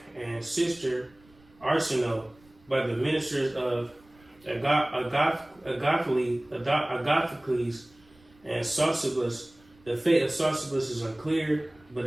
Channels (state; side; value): noise; right; rumble, 30 dB below the sound